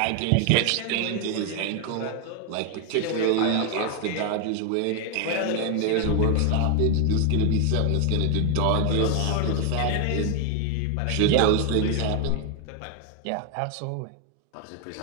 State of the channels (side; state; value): both; different; correlation 0.01